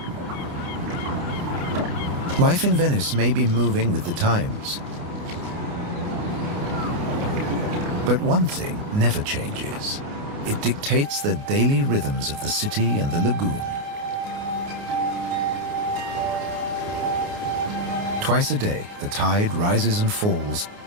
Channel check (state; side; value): late; left; 29 ms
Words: Life in Venice may be moving with the times. But one thing never changes. It dictates the daily rhythms of the city and the lagoon. Twice a day, the tide rises and falls